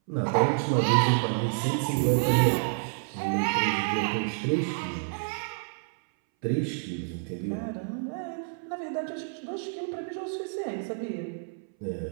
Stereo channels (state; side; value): silent; left; 59 dB below the other